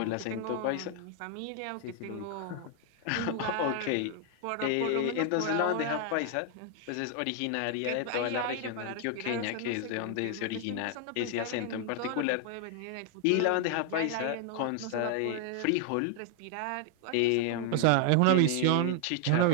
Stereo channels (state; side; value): different; both; correlation 0.00